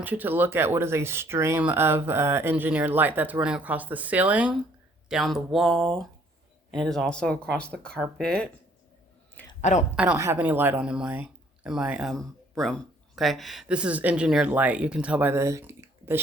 you to look at what is a stream of engineered light that's running across the ceiling, down the wall, and it is also across the carpet. I don't have any light on in my room. Okay, this is engineered light. You can tell by the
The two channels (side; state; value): both; normal; correlation 0.62